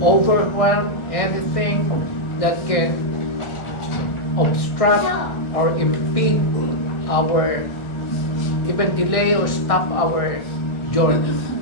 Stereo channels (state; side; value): late; right; 1.6 ms